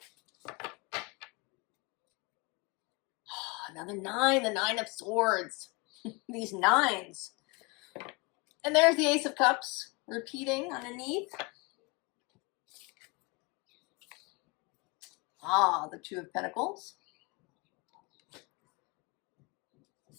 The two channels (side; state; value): right; quieter; 28.2 dB